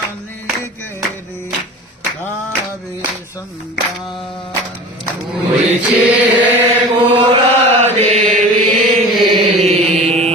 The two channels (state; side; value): normal; both; correlation 0.37